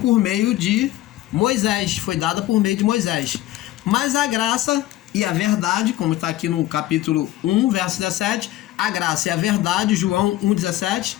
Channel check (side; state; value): right; quieter; 15.2 dB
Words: meio de Moisés, foi dada por meio de Moisés. Mas a graça e a verdade, como está aqui no capítulo 1, verso 17, a graça e a verdade, João 1,17,